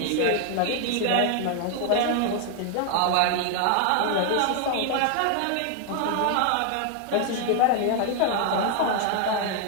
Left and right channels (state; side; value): different; both; correlation 0.00